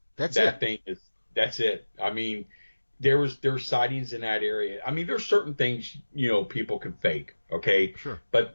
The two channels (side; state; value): both; inverted; correlation -1.00